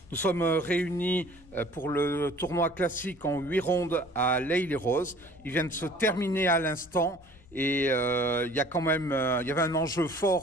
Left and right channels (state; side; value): noise; left; rumble, 25 dB below the sound